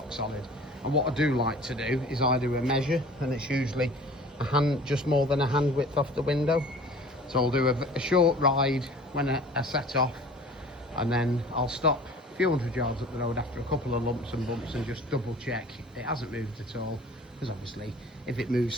solid. And what I do like to do is I do a measure, and it's usually just more than a hand width off the window. So I'll do a short ride when I set off, and then I'll stop a few hundred yards up the road after a couple of lumps and bumps and just double check it hasn't moved at all, because obviously if it moves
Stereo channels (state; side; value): normal; both; correlation 0.45